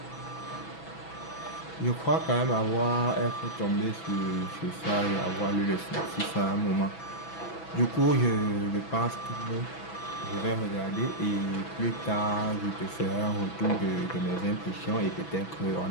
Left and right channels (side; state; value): right; late; 6.1 ms